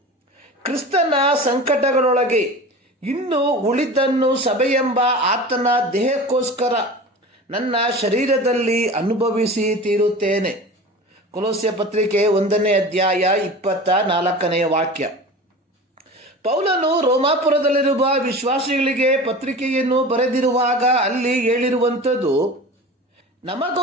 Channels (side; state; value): both; normal; correlation 0.35